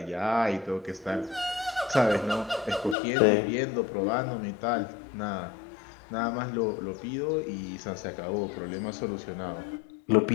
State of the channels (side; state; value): right; drops out; at 3.0 s